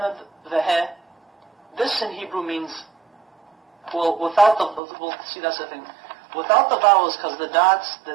Vahe. This in Hebrew means, we'll see, that's the thing. Without the vowels, because the dots, the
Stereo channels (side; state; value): left; drops out; at 4.8 s